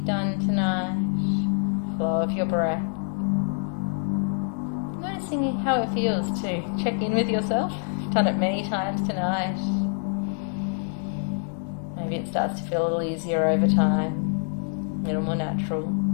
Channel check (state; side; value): silent; right; 61 dB below the other